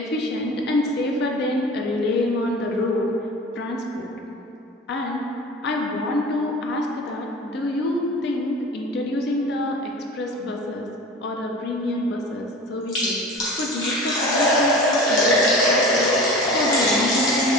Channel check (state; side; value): normal; both; correlation 0.37